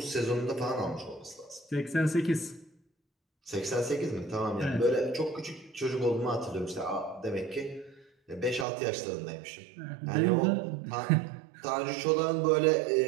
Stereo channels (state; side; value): drops out; left; at 8.7 s